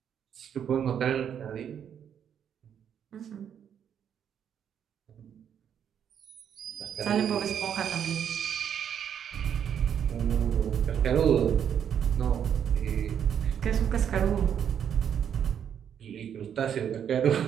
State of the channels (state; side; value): quieter; left; 8.6 dB